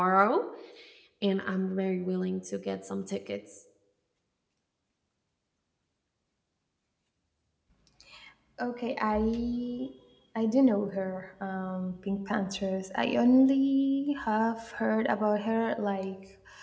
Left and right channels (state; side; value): identical; both; correlation 1.00